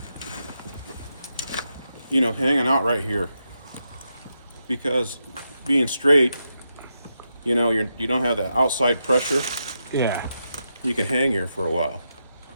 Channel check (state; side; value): inverted; both; correlation -0.85